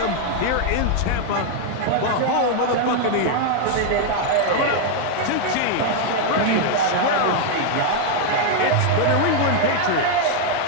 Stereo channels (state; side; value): different; both; correlation 0.00